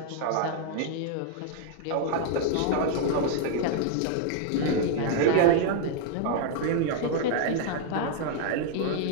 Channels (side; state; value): both; different; correlation 0.00